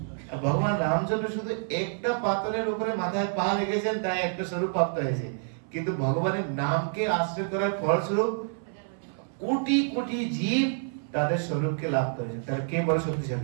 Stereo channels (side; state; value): left; silent; 58 dB below the other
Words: ভগবান রামচন্দ্র শুধু একটা পাথরের উপরে মাথায় পা রেখেছেন, তাই একটা স্বরূপ প্রাপ্ত হয়েছে, কিন্তু ভগবানের নামকে আশ্রয় করার ফলস্বরূপ কোটি কোটি জীব তাদের স্বরূপকে লাভ করেছেন। তাহলে কে বড়